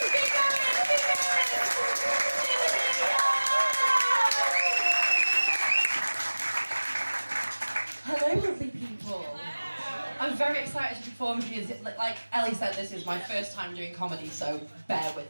Hello, lovely people. I'm very excited to perform because, like Ellie said, this is my first time doing comedy, so bear with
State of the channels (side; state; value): both; inverted; correlation -1.00